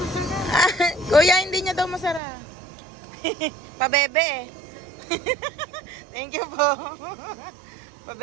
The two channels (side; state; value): left; drops out; at 2.2 s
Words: Kuya, hindi niya daw masarap. Pabebe eh. Thank you po.